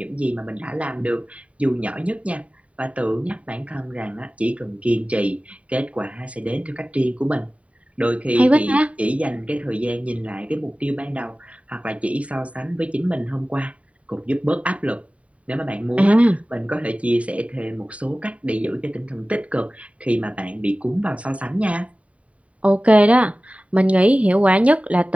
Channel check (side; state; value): left; late; 0.066 ms